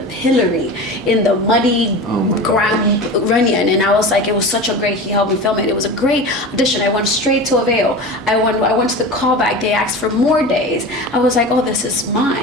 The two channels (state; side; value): normal; both; correlation 0.30